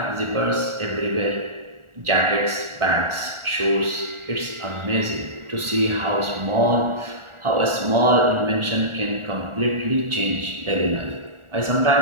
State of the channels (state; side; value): late; left; 1.4 ms